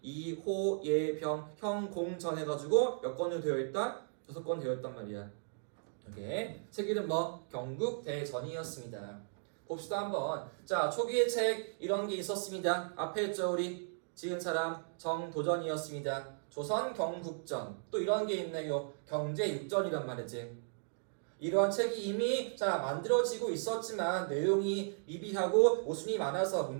이, 호, 예, 병, 형, 공 전 해가지고 몇 권으로 되어 있다? 6권 되어 있단 말이야. 이게 책 이름 경국대전이었습니다. 봅시다 한번. 자, 초기의 책 이런 게 있었습니다. 앞에 있죠 우리 지은 사람 정도전이었습니다. 조선 경국전 또 이런 게 있네요. 경제육전이란 말이지. 이러한 책이 이미 만들어지고 있었지만 내용이 미비하고 모순이 많아서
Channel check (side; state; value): left; silent; digital silence